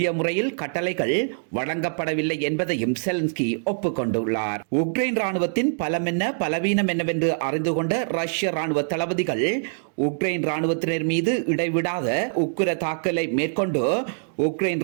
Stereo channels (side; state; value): left; silent; digital silence